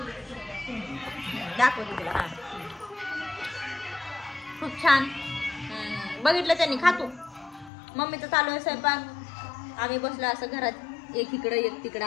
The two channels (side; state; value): right; drops out; at 7.7 s